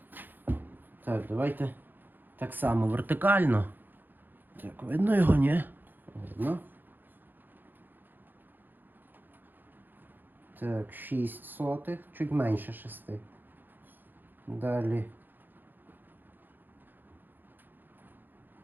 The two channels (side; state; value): left; late; 0.090 ms